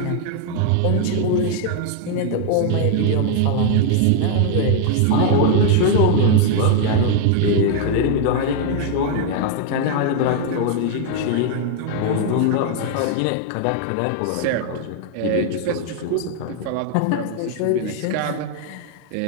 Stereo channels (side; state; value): both; different; correlation 0.00